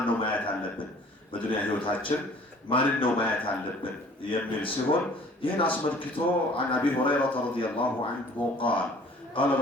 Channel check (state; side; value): normal; both; correlation 0.52